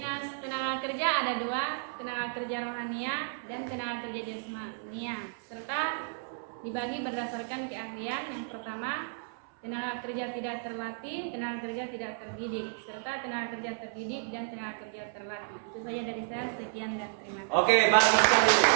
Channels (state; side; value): silent; left; 56 dB below the other